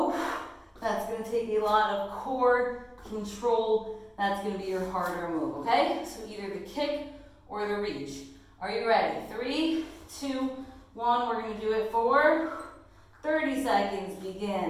That's going to take a lot of core control. That's going to be your harder move, okay? So either the kick or the reach. Are you ready? 3, 2, 1, we're going to do it for 30 seconds,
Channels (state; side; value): identical; both; correlation 1.00